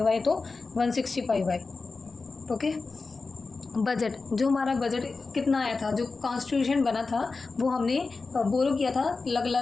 आए तो 165 आए, ओके। बजट, जो हमारा बजट कितना आया था, जो कॉन्स्टिट्यूशन बना था वो हमने बोरो किया था अलग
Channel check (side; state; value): right; quieter; 4.1 dB